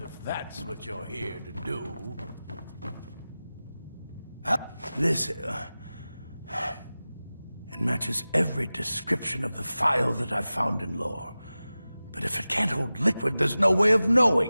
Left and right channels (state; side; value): inverted; both; correlation -0.96